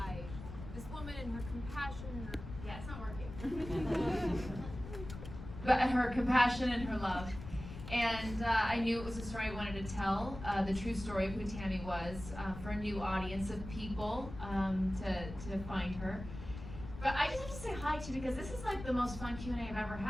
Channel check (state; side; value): noise; left; rumble, 11 dB below the sound